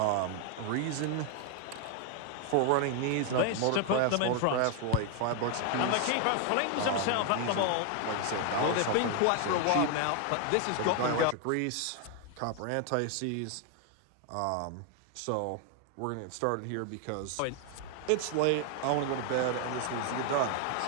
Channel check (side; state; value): both; different; correlation 0.00